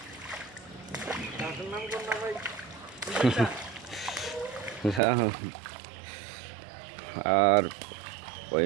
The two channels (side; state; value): left; drops out; at 5.0 s